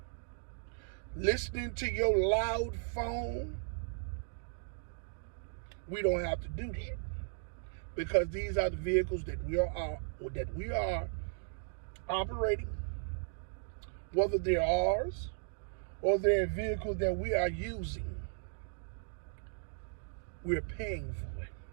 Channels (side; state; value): left; silent; digital silence